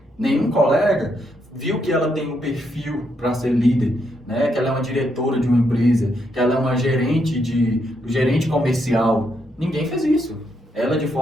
Nenhum colega viu que ela tem um perfil para ser líder, né? Que ela é uma diretora de uma empresa, que ela é uma gerente comercial. Ninguém fez isso. Ela, de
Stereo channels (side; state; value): both; normal; correlation 0.78